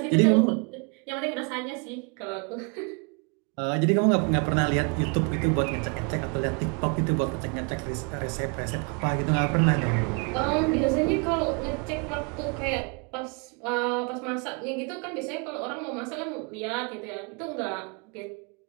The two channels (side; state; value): left; quieter; 34.4 dB